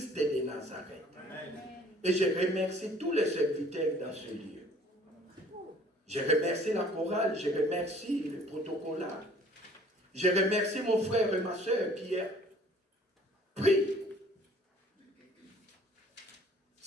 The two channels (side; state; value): both; normal; correlation 0.55